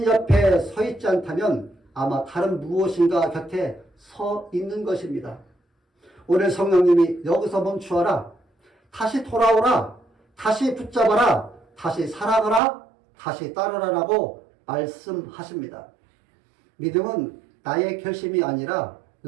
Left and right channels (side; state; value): left; drops out; at 12.6 s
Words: 옆에 서 있지 않다면 아마 다른 무엇인가 곁에 서 있는 것입니다. 오늘 성령님이 여기서 멈추어라, 다시 돌아오라, 다시 붙잡아라, 다시 사랑하라, 다시 따르라라고 말씀하십니다. 믿음은 나의 결심이 아니라